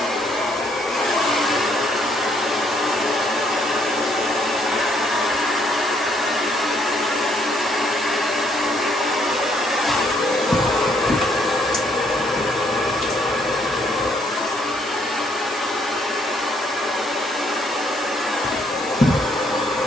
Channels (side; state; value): both; normal; correlation 0.69